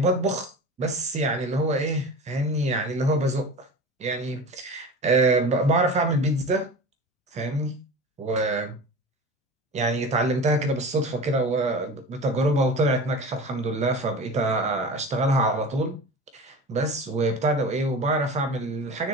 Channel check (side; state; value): both; normal; correlation 0.33